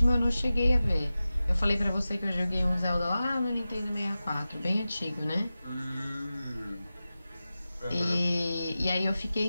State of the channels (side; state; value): both; inverted; correlation -0.95